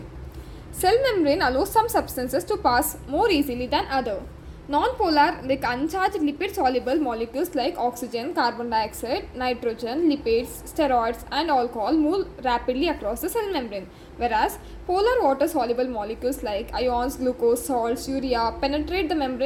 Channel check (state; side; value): identical; both; correlation 1.00